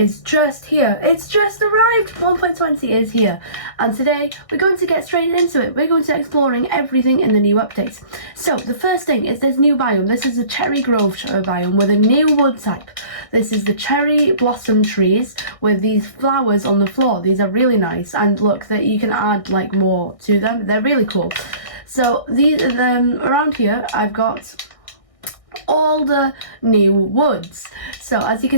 just here. It's just arrived. 1.20 is here. And today we're going to get straight into it. We're going to exploring everything in the new updates. So the first thing is this new biome. This is a cherry grove biome with a new wood type. This is the cherry blossom trees with these flowers on the floor. These are really nice, and look that you can add like more to them. They're really cool. So these around here I've got all the new woods. So as you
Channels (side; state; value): right; late; 1.6 ms